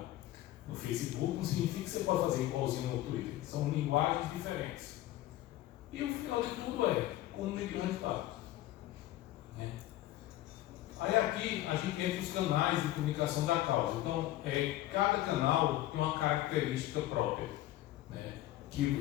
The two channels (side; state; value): right; quieter; 15.1 dB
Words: no Facebook não significa que você pode fazer igualzinho no Twitter. São linguagens diferentes. E o final de tudo é como medir o resultado. Né? Aí aqui a gente entra os canais de comunicação da causa. Então, cada canal tem uma característica própria, né?